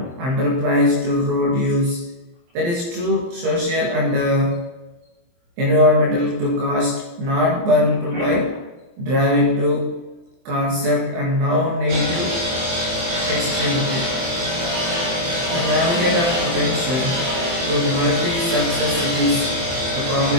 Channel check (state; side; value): late; left; 23 ms